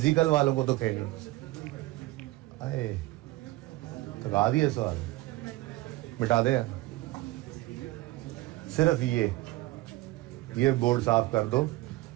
वालों को तो कहीं अरे तो गा दिए सवाल, मिटा दे यार, सिर्फ ये बोर्ड साफ कर दो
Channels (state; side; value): quieter; left; 18.6 dB